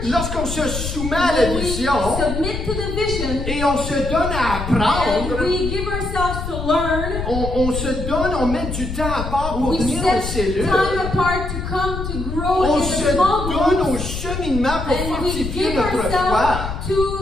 Lorsqu'on se soumet à la When we vision submit to the vision et on se donne à and apprendre, we give ourselves to learn, on se donne, on met du temps à part pour we venir aux set cellules. time apart to come to grow On in se the small donne groups, au cheminement pour and we fortifier give notre foi. ourselves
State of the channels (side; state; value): left; noise; rumble, 5 dB below the sound